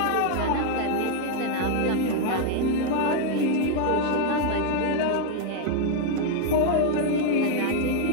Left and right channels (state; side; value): different; both; correlation 0.00